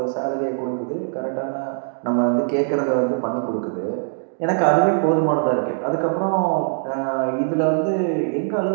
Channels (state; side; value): silent; left; 64 dB below the other